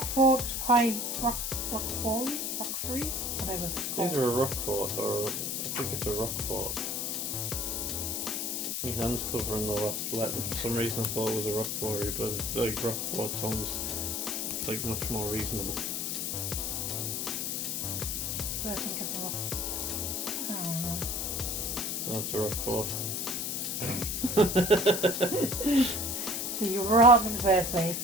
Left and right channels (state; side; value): noise; left; hiss, 1 dB below the sound